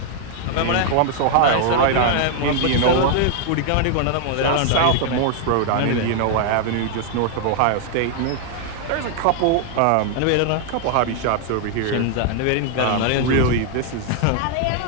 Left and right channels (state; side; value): different; both; correlation 0.00